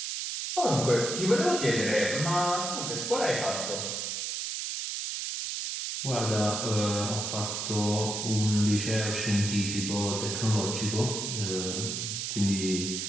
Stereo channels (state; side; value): noise; right; hiss, 3 dB below the sound